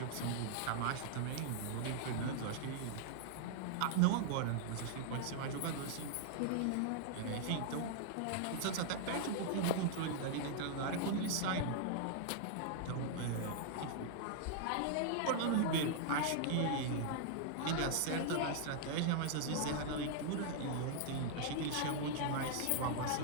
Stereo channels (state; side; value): different; both; correlation -0.01